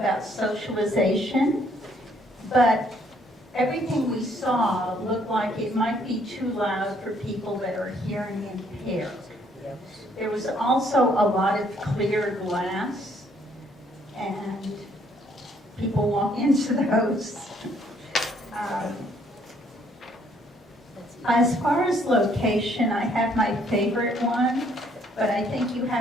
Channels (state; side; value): normal; both; correlation 0.66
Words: socialization, but everything we saw looked like it might be too loud for people that are hearing impaired. There was also a lot of clear glass, and people walk into those. As far as location, I have my favorite one, but I think you